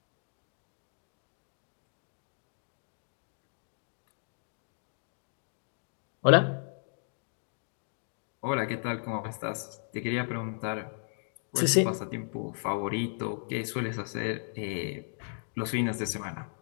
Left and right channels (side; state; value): right; silent; digital silence